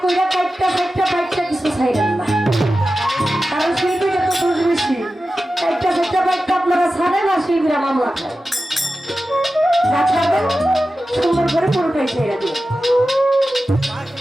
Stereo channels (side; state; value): both; normal; correlation 0.93